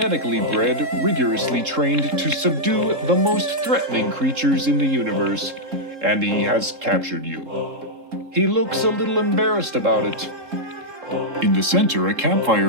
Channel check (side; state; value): left; late; 3.7 ms